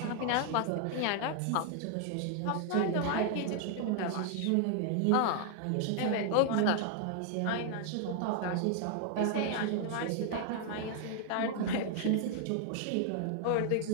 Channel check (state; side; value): different; both; correlation 0.00